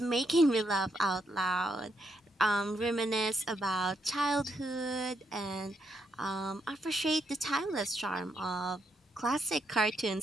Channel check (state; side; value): normal; both; correlation 0.78